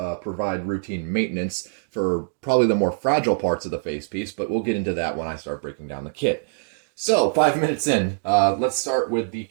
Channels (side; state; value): left; silent; digital silence